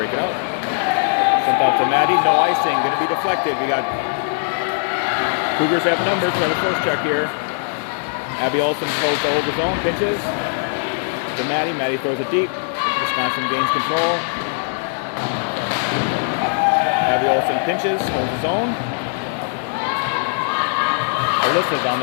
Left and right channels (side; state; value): right; silent; digital silence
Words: it out. Sent out to Maddie, no icing, going to be deflected. We got Cougars have numbers for the first check here. Abby Olsen throws to over zone, pinches to Maddie. Maddie throws it deep. Wisconsin gains control. Abby Olsen pinches, holds his own. Alyssa's on